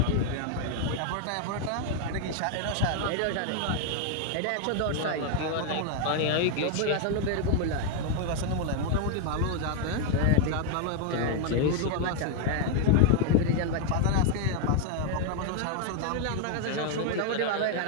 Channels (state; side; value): different; both; correlation 0.00